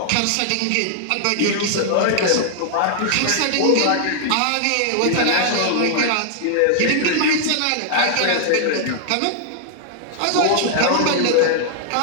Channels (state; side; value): different; both; correlation -0.01